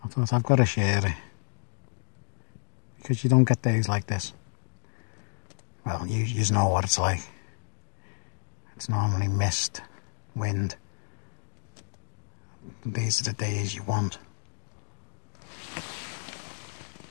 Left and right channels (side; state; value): right; silent; 58 dB below the other